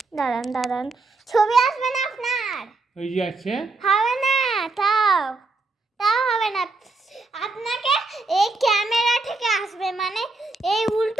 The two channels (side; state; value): left; quieter; 3.5 dB